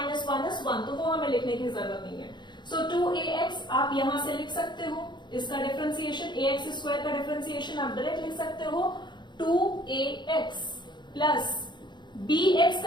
is 1, तो वो हमें लिखने की जरूरत नहीं है। सो 2ax आप यहां से लिख सकते हो, इसका डिफरेंशिएशन ax² का डिफरेंशिएशन आप डायरेक्ट लिख सकते हो 2ax प्लस bx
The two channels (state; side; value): late; right; 0.22 ms